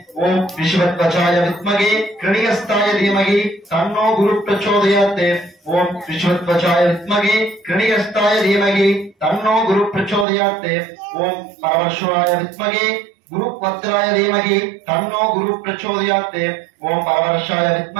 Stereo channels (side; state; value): left; drops out; at 10.2 s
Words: ஓம் விஸ்வத்வசாய வித்மகே கிருணிகஸ்தாய தீமகி தன்னோ குரு பிரச்சோதயாத் ஓம் விஸ்வத்வசாய வித்மகே கிருணிகஸ்தாய தீமகி தன்னோ குரு பிரச்சோதயாத் ஓம் பரமேஸ்வராய வித்மகே குரு பத்ராய தீமகி தன்னோ குரு பிரச்சோதயாத் ஓம் பரமேஸ்வராய